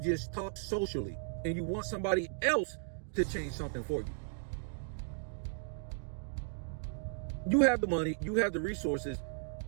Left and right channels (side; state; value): left; silent; digital silence